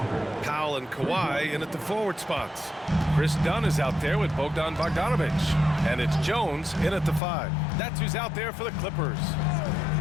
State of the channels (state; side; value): drops out; right; at 7.2 s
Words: Powell and Kawhi in at the forward spots. Chris Dunn is out there with Bogdan Bogdanovich. And it's Jones in at the 5. That's who's out there for the Clippers.